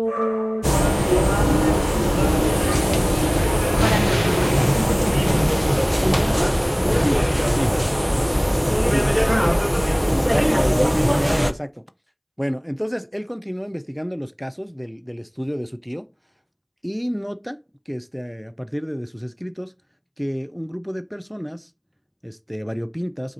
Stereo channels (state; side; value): identical; both; correlation 1.00